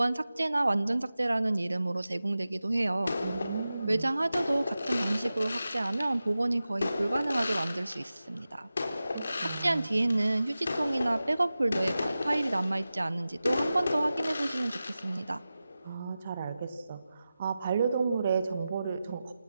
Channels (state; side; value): inverted; both; correlation -0.94